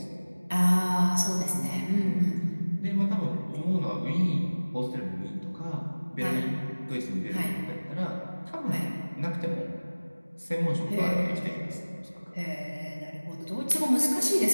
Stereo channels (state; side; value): inverted; both; correlation -1.00